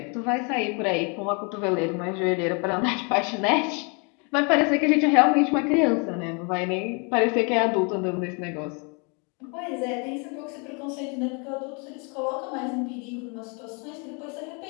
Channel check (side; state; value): right; quieter; 34.5 dB